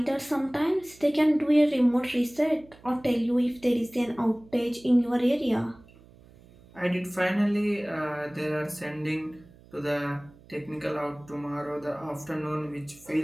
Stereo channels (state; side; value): noise; right; hum, 25 dB below the sound